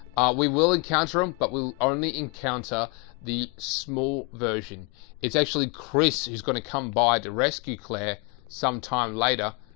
we will encounter them, but we'll only encounter the small version. It's actually Chris who's going to come by to rescue Claire sometime later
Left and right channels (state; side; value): quieter; right; 30.9 dB